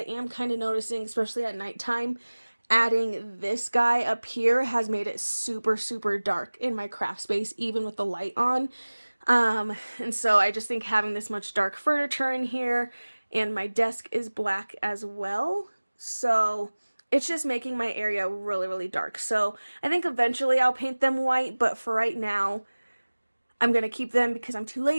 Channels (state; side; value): inverted; both; correlation -1.00